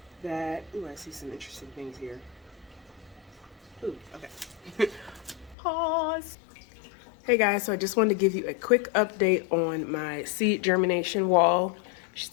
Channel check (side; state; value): right; drops out; at 5.6 s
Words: that, ooh, I see some interesting things here. Ooh, okay. Pause. Hey guys, so I just wanted to give you a quick update on my seed germination wall,